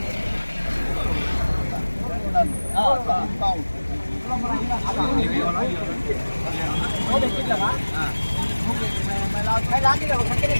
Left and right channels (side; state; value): both; inverted; correlation -1.00